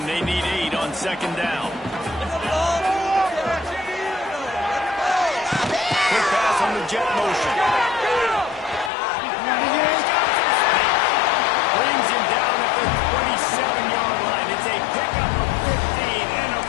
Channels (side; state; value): right; drops out; at 8.9 s